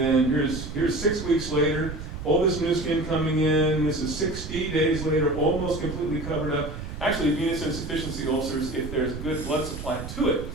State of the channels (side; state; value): right; noise; rumble, 9 dB below the sound